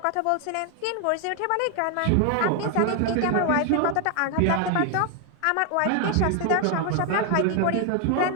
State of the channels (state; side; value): different; both; correlation 0.01